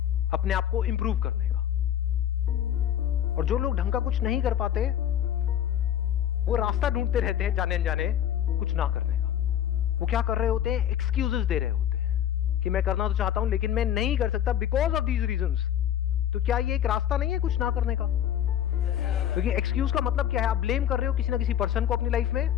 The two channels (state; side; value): quieter; right; 10.4 dB